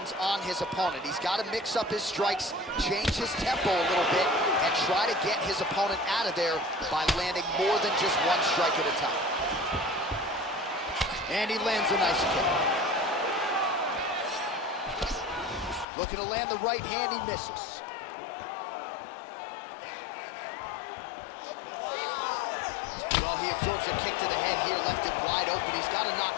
on his opponent. He's got to mix up his strikes, change his tempo a little bit, and try to get his opponent out of there by landing more than just one strike at a time. And he lands a nice kick. Looking to land the right hand, he misses. Well, he absorbs a kick to the head here, left it wide open. He's got to not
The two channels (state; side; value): drops out; right; at 15.9 s